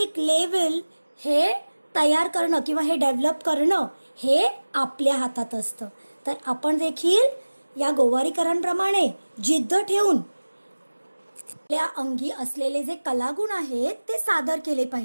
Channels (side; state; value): both; inverted; correlation -1.00